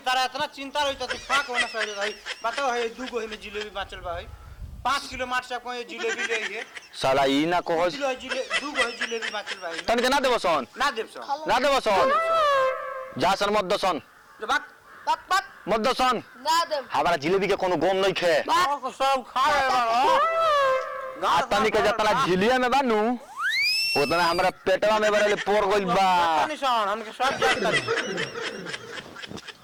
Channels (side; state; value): both; identical; correlation 1.00